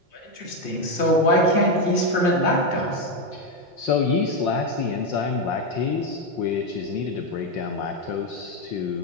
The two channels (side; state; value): left; late; 5.6 ms